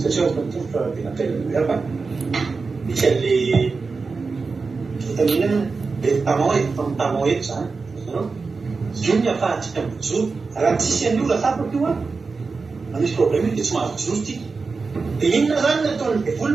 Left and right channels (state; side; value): quieter; left; 4.4 dB